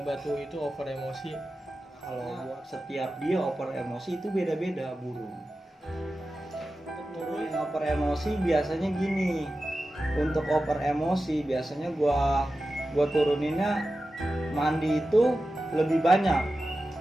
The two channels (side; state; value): both; normal; correlation 0.93